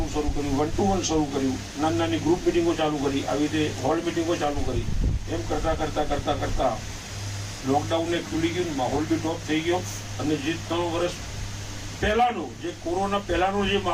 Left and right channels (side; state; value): both; identical; correlation 1.00